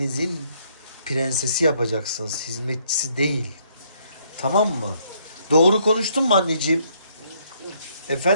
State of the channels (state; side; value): inverted; both; correlation -0.69